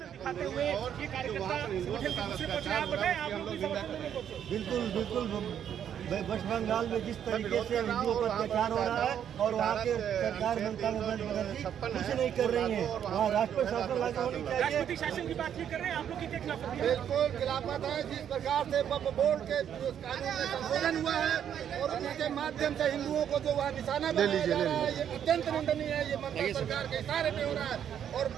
दिखाते हुए ये कार्यकर्ता बिल्कुल बिल्कुल वेस्ट बंगाल में जिस तरीके से हिंदुओं पर अत्याचार हो रहा है और वहाँ के सरकार ममता बनर्जी कुछ नहीं कर रही है, वहाँ राष्ट्रपति शासन लागू होनी चाहिए। राष्ट्रपति शासन की बात नहीं कर रहे हैं आप लोग, कितने खिलाफ? बिल्कुल खिलाफत है। जिस प्रकार से वक्फ बोर्ड के कानून में संशोधन हुआ है और उनके माध्यम से हिंदुओं को जो वहाँ निशाना बनाया जा रहा है, ये अत्यंत निंदनीय है। ये ममता सरकार के इशारे पे हो रहा है। और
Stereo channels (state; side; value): quieter; left; 9.2 dB